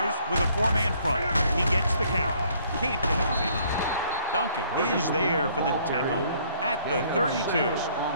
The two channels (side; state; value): both; inverted; correlation -0.62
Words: with a four-man front. He gets the count. Can't get him behind. Duncan is there for the tackle at the 32.